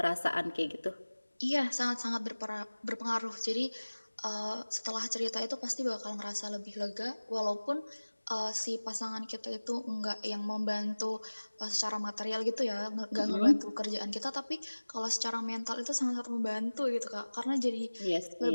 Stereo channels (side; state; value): both; inverted; correlation -1.00